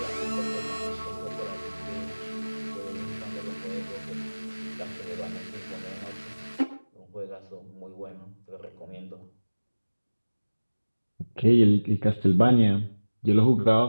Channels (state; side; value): inverted; both; correlation -1.00